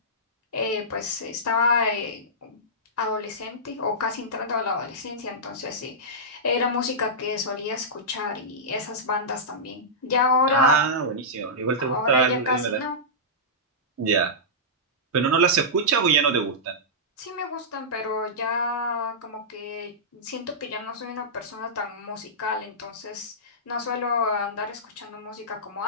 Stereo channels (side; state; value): both; normal; correlation -0.14